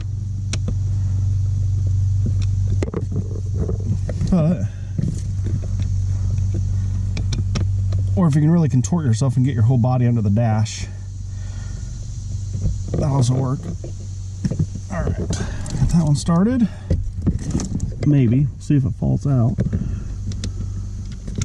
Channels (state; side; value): identical; both; correlation 1.00